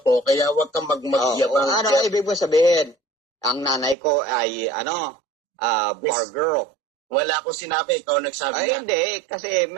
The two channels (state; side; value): drops out; left; at 4.0 s